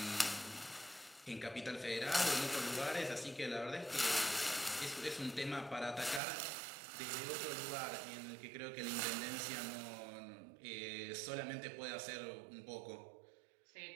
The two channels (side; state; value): left; drops out; at 6.2 s